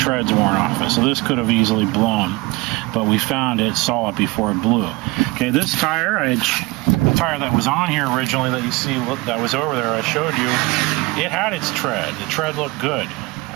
worn off it. So this could have easily blown, but we found it, saw it before it blew. Okay, this tire, the tire that was on here originally that you see that was over there I showed you, it had its tread. The tread looked good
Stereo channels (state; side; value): quieter; left; 23.2 dB